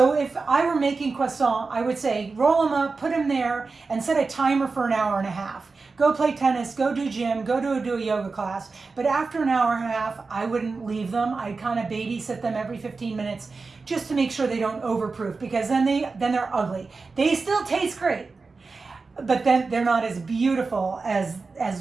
if I were making croissant, I would say roll them up, put them there, and set a timer for an hour and a half. Go play tennis, go do gym, go do a yoga class. But after an hour and a half, I wouldn't leave them. I'd kind of babysit them every 15 minutes just to make sure they don't overproof, because then they're ugly. They still taste great, but then they're not as beautiful as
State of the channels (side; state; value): left; quieter; 4.2 dB